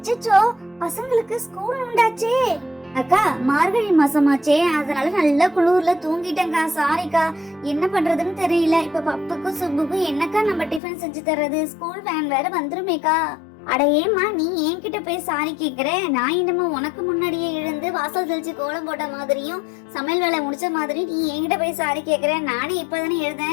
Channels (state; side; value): drops out; right; at 10.8 s